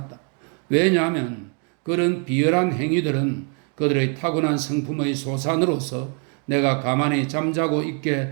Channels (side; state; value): left; quieter; 39.8 dB